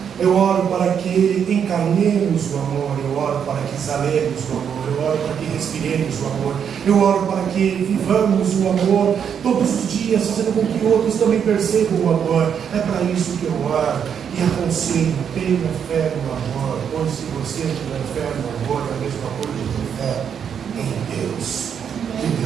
Eu oro para que encarnemos o amor. Eu oro para que exalemos o amor. Eu oro para que respiremos o amor. Eu oro para que vivamos o amor todos os dias, fazendo com que outros também percebam o amor. É para isso que eu oro e aconselho: tenha fé no amor, pois se você tiver fé no amor, é a mesma coisa de ter fé em Deus. Que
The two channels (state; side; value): quieter; left; 7.8 dB